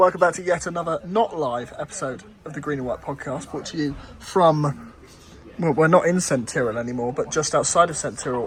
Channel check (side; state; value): both; identical; correlation 1.00